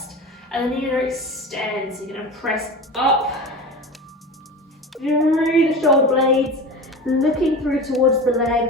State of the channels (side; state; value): both; normal; correlation 0.30